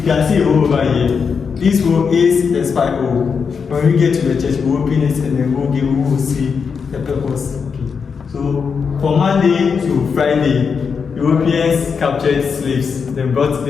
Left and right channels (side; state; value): right; quieter; 5.9 dB